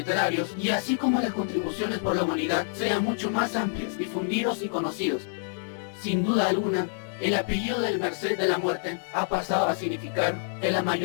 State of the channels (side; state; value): right; silent; 60 dB below the other